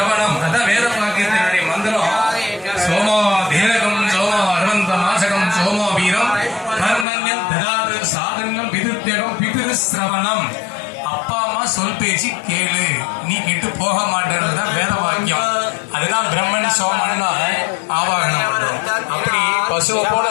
அதான் வேத வாக்கியத்தினுடைய மந்திரம். சோமோ தீரகம் சோமோ அரவந்த மாசகம் சோமோ வீரம் கர்மண்யம் ததாது சாதனம் பிதுத்யகம் பிதிரு சிரவணம். அப்பா அம்மா சொல் பேச்சு கேளு, நீ கெட்டு போக மாட்டேன்றதுதான் வேத வாக்கியம். அதுதான் பிரம்மன் சோமன் ஆவாகனம் பண்றோம். அப்படி பசுவை போல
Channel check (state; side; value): drops out; right; at 7.1 s